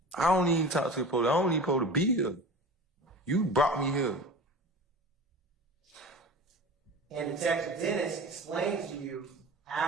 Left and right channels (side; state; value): both; normal; correlation 0.35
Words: I don't even talk to the police. I don't even supposed to be here. You brought me here. And Detective Dennis explains to you,